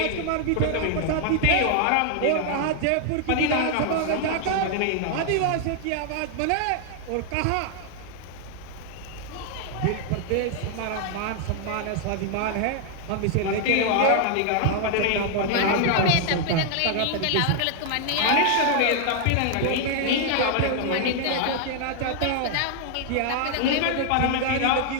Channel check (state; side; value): different; both; correlation 0.00